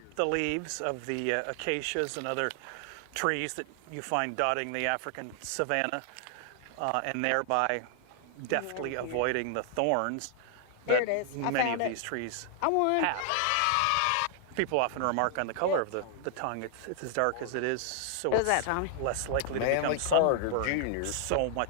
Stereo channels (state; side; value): different; both; correlation 0.00